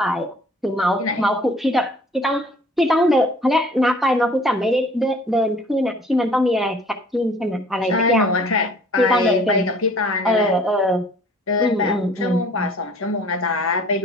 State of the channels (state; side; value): normal; both; correlation 0.53